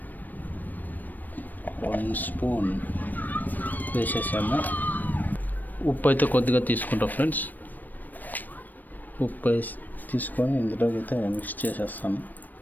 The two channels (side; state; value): right; late; 0.088 ms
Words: 1 స్పూన్ వేసేసాము. ఉప్పు అయితే కొద్దిగా తీసుకుంటాం ఫ్రెండ్స్. ఉప్పు వేసి తీసుకొని ఇందులోకి అయితే మిక్స్ చేసేస్తాను.